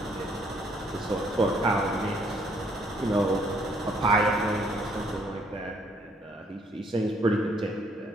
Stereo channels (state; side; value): normal; both; correlation 0.66